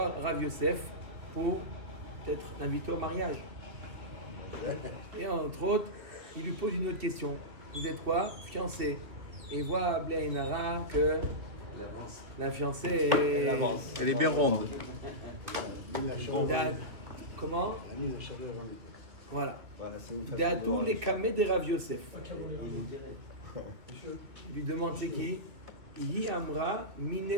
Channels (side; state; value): left; late; 2.8 ms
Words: Rav Yosef pour peut-être l'inviter au mariage. Et entre autres, il lui pose une autre question. Vous êtes quoi? Fiancé. Et voit Blainara que la fiancée est... Elle est bien ronde. Comment? Voilà. D'Atou les Kameh de Rav Yosef. Il lui demande c'est qui? Yi Amra